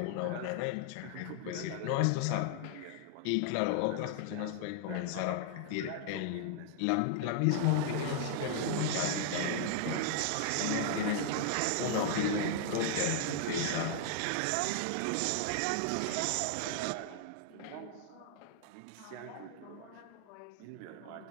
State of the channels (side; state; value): both; different; correlation -0.01